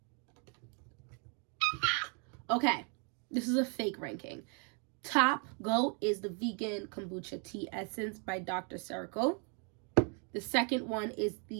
Okay, this is a fake ranking. Top GOAT is the vegan kombucha tea essence by Dr. Cleo. The second one is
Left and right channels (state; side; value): quieter; left; 37.8 dB